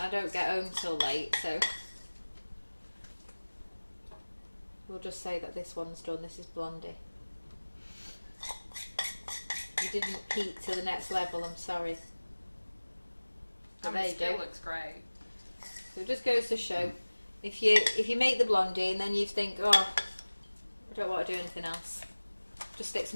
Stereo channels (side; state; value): both; inverted; correlation -1.00